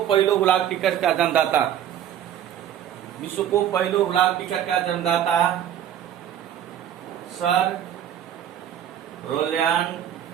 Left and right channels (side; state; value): left; quieter; 10.3 dB